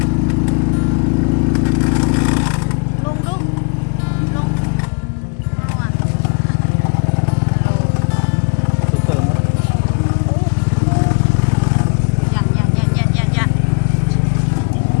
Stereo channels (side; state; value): right; quieter; 37.9 dB